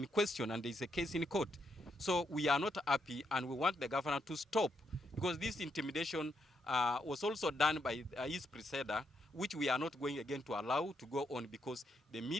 question and there is a case in court. So we are not happy, and we want the governor to stop, because this intimidation was also done by his predecessor, which we are not going again to allow to go on, because the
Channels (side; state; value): both; normal; correlation 0.79